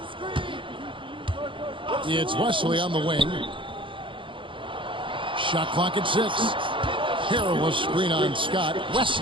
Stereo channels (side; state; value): left; late; 0.25 ms